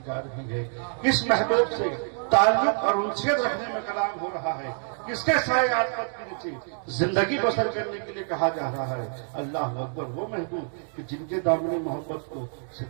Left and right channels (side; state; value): left; silent; 60 dB below the other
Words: جا رہی ہے، کس محبوب سے تعلق اور انسیت رکھنے میں کلام ہو رہا ہے. کس کے سائے عاطفت کے نیچے زندگی بسر کرنے کے لیے کہا جا رہا ہے. اللہ اکبر. وہ محبوب کہ جن کے دامن محبت کو